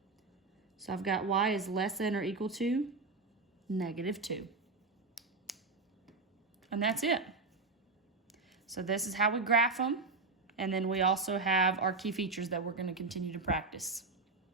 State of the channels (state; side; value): quieter; left; 3.9 dB